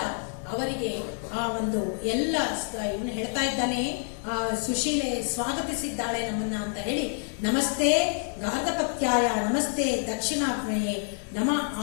ಅವರಿಗೆ ಆ ಒಂದು ಎಲ್ಲ ಇವನು ಹೇಳ್ತಾ ಇದ್ದಾನೆ, ಆ ಸುಶೀಲೆ ಸ್ವಾಗತಿಸಿದ್ದಾಳೆ ನಮ್ಮನ್ನ ಅಂತ ಹೇಳಿ, ನಮಸ್ತೆ ಗಾರ್ಧಪತ್ಯಾಯ, ನಮಸ್ತೆ ದಕ್ಷಿಣಾಗ್ನೇಯೇ, ನಮ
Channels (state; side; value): silent; right; 57 dB below the other